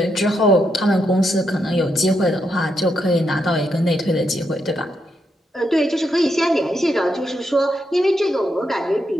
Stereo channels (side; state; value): both; normal; correlation 0.81